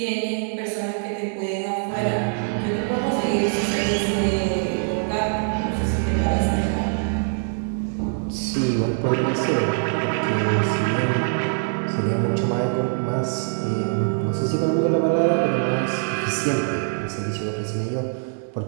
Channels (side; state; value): left; silent; digital silence